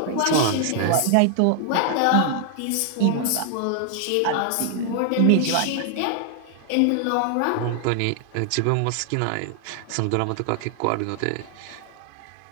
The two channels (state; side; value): different; both; correlation 0.00